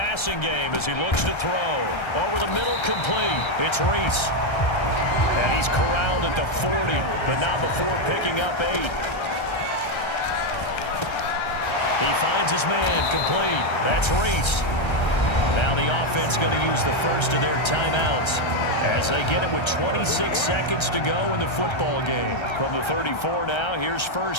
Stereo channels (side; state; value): right; late; 1.3 ms